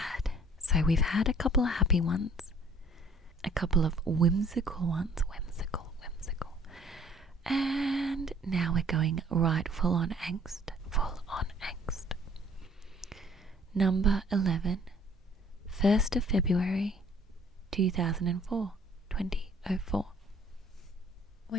So we've had a couple of happy ones, a couple of whimsical ones, whimsical. And now we're going right full on angst. Number 11, 1st of February 2004.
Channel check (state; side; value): normal; both; correlation 0.56